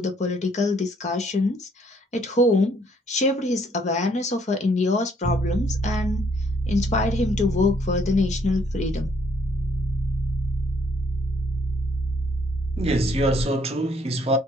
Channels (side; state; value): both; normal; correlation 0.67